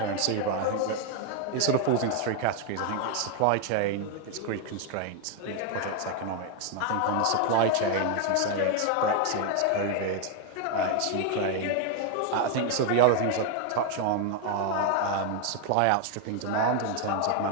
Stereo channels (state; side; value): different; both; correlation 0.01